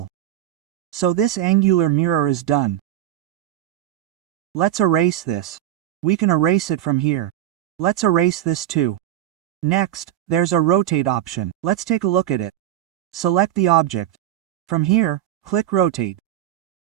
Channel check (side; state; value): left; quieter; 12.6 dB